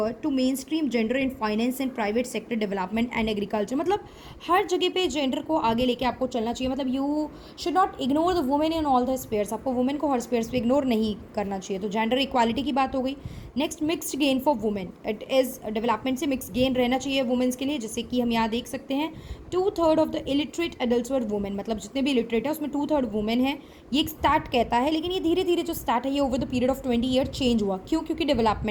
to mainstream gender in finance and private sector development and agriculture. मतलब हर जगह पे जेंडर को आगे लेके आपको चलना चाहिए. मतलब you should not ignore the women in all the spheres. आपको वुमेन को हर स्पेयर्स पे इग्नोर नहीं करना चाहिए. तो जेंडर इक्वालिटी की बात हो गई. Next, mixed gain for women. It is development से मिक्स गेन रहना चाहिए वुमेन्स के लिए. जैसे कि हम यहाँ देख सकते हैं 2/3 of the illiterate adults were women. मतलब जितने भी इलिटरेट है उसमें 2/3 वुमेन है. ये एक स्टार्ट कहता है, लेकिन ये धीरे धीरे जो स्टार्ट है ये over the period of 20 year change हुआ. क्यों? क्योंकि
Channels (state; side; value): identical; both; correlation 1.00